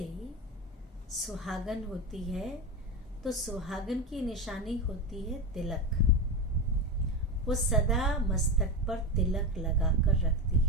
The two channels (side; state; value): both; normal; correlation 0.19